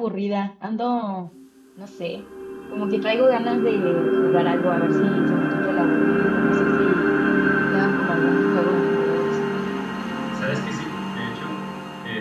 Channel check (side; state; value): both; identical; correlation 1.00